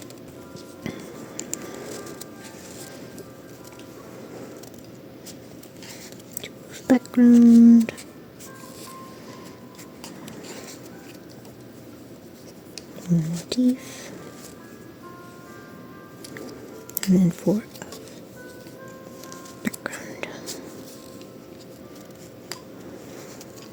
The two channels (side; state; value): both; identical; correlation 1.00